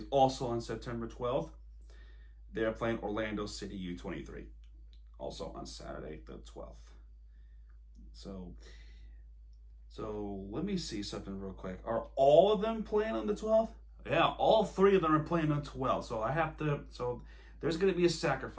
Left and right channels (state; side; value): identical; both; correlation 1.00